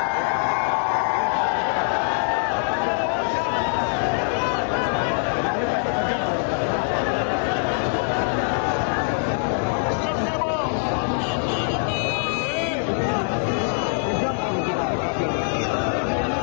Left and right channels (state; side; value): silent; right; 63 dB below the other